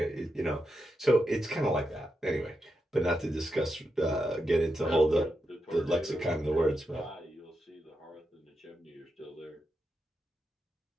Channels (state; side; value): normal; both; correlation 0.86